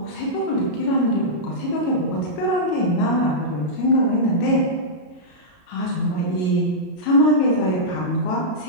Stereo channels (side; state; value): right; late; 33 ms